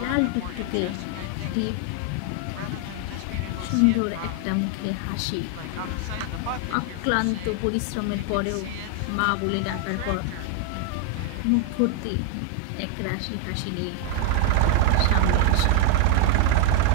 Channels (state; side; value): different; both; correlation 0.01